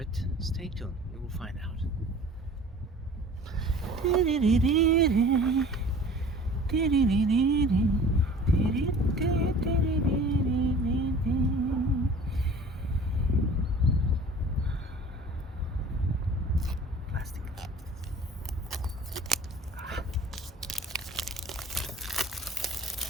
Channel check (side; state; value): both; normal; correlation 0.46